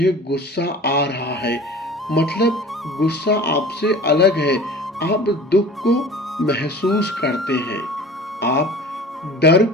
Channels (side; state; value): both; normal; correlation 0.41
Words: गुस्सा आ रहा है। मतलब गुस्सा आपसे अलग है। आप दुख को महसूस करते हैं, आप डर